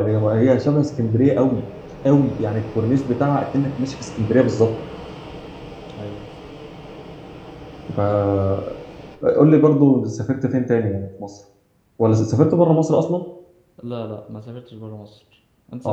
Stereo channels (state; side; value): identical; both; correlation 1.00